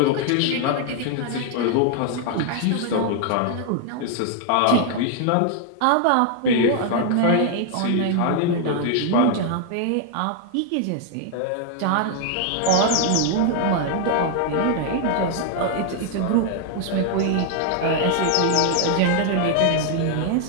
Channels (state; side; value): different; both; correlation 0.00